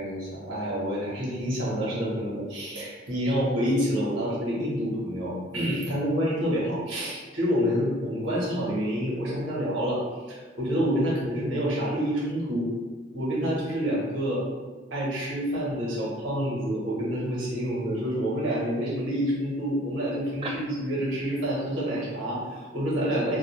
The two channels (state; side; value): normal; both; correlation 0.53